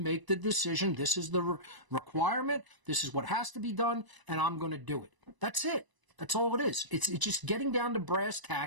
the decision. This is the requirement. This is what has to be done, and I'm going to do it. That's it. That's all it is. It's just getting down to brass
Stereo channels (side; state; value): left; late; 1.0 ms